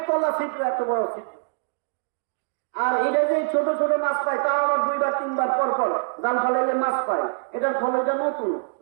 তলা ছিদ্র এত বড় ছিদ্র, আর এটা যে ছোট ছোট মাছ পায়, তা আবার 2বার 3বার পর জাল ফেলাইলে মাছ পায়। এটার খলটা নতুন,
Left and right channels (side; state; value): left; silent; digital silence